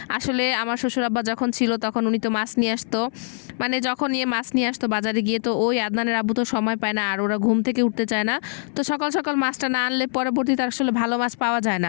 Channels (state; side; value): silent; right; 58 dB below the other